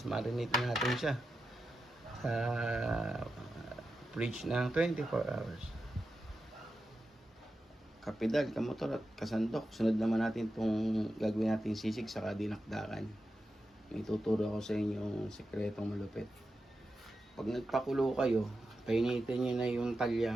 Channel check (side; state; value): both; normal; correlation 0.90